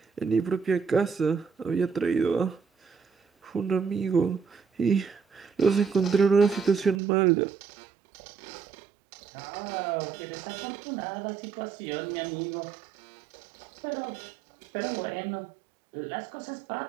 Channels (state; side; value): drops out; left; at 7.0 s